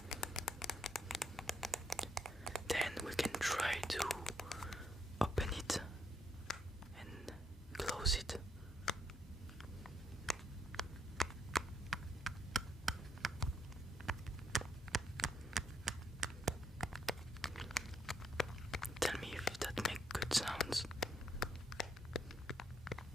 Then we can try to open it and close it. Tell me if that makes good sounds.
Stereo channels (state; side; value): normal; both; correlation 0.75